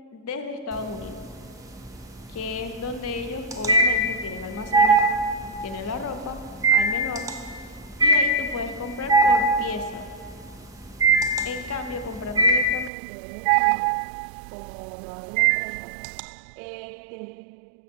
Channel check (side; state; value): left; drops out; at 12.9 s